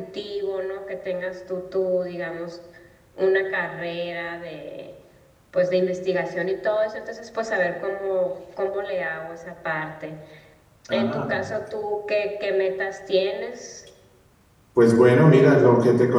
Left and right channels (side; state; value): both; identical; correlation 1.00